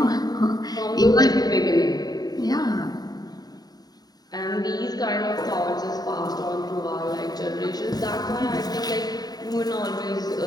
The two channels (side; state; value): right; late; 0.19 ms